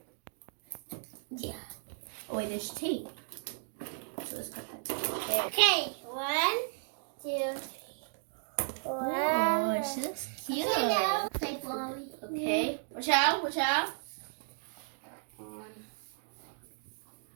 Yeah. Oh wait, there's tape. So let's cut that. Okay, 1, 2, 3. Wow. Oh, she looks cute. Okay, now play Blobby. Okay. Watch out.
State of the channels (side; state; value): left; silent; digital silence